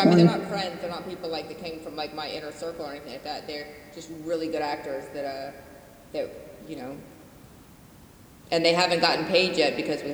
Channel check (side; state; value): both; identical; correlation 1.00